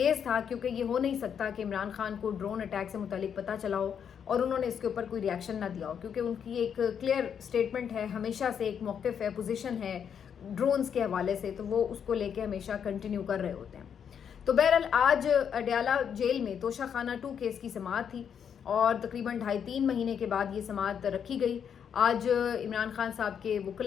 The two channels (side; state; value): right; quieter; 7.9 dB